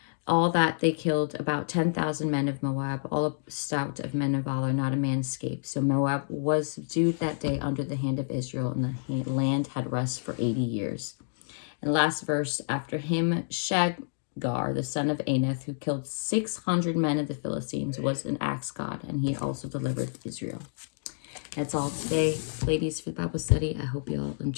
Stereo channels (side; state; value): right; silent; digital silence